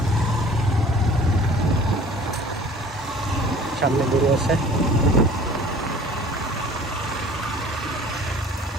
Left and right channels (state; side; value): normal; both; correlation 0.47